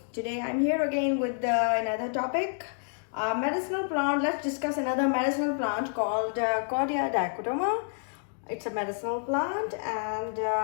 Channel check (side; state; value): right; silent; digital silence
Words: Today I'm here again with another topic, medicinal plant. Let's discuss another medicinal plant called Cordia Dicotoma. It's a medicinal plant, and